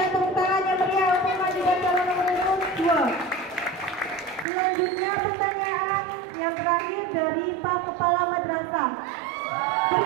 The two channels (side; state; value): left; drops out; at 4.5 s